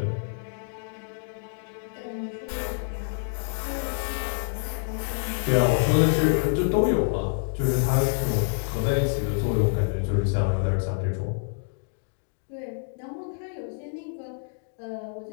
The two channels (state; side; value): silent; right; digital silence